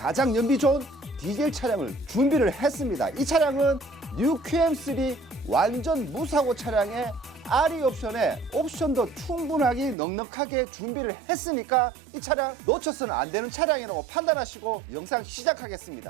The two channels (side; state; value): left; drops out; at 10.0 s